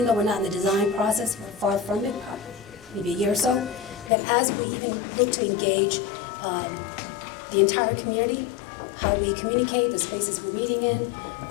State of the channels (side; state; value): right; drops out; at 4.1 s